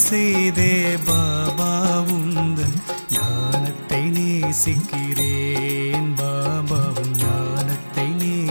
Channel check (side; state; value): both; inverted; correlation -1.00